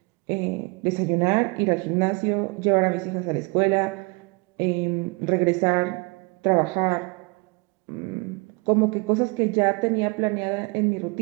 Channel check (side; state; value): left; quieter; 29.3 dB